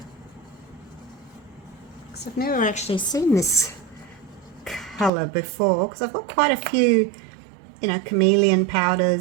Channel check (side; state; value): left; drops out; at 5.1 s